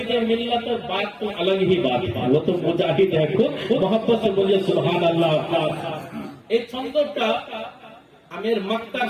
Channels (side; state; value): both; identical; correlation 1.00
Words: मिल्लत बात तो अलग ही बात है, वो तो मुजाहिद है खुद। मोहब्बत से बोलिए सुभान अल्लाह। এই ছন্দটা আমি এর মাক্তার